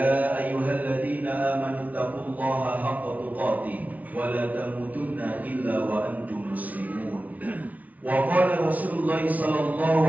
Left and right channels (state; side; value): late; left; 0.076 ms